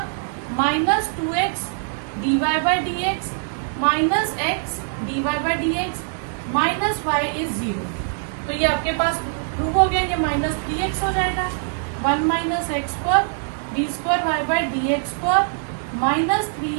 minus 2x d y by d x minus x d y by d x minus y is 0, तो ये आपके पास prove हो गया, ये -3x हो जाएगा, 1 minus x square d square y by d x square minus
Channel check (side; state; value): left; silent; digital silence